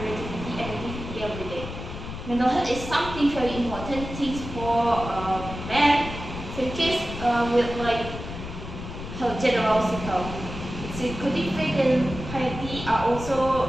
and activity every day. Mental health is something very important things for men. So in case with like health general cycle, psychotic faith and piety are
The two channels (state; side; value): noise; left; rumble, 9 dB below the sound